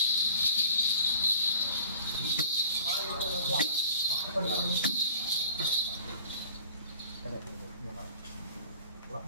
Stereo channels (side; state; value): both; inverted; correlation -0.45